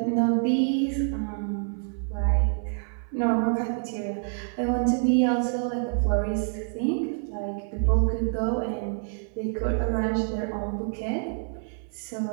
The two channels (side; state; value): left; silent; 56 dB below the other